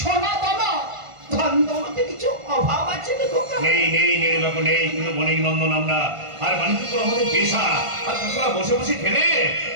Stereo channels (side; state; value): left; late; 1.5 ms